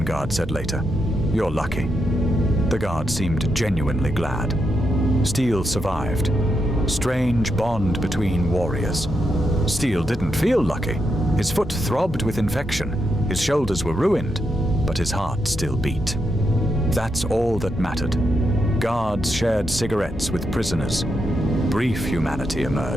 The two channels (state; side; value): normal; both; correlation 0.83